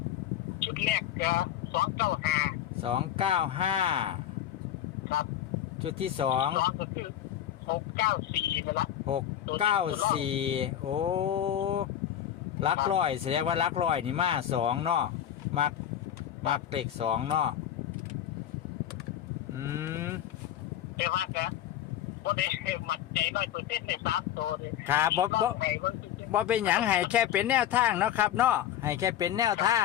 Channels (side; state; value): right; quieter; 11.1 dB